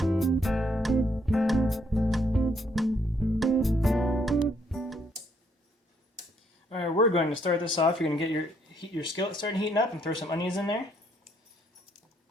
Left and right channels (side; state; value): both; normal; correlation 0.70